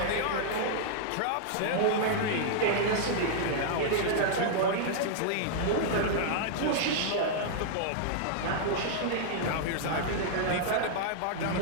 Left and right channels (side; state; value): both; different; correlation -0.02